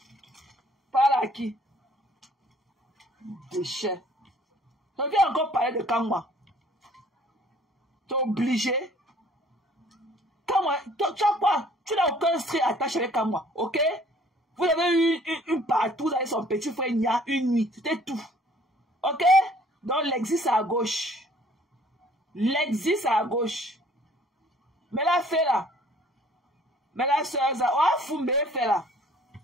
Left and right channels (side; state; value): both; normal; correlation 0.56